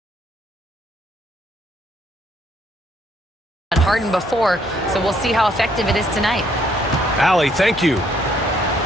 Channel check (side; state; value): both; normal; correlation 0.68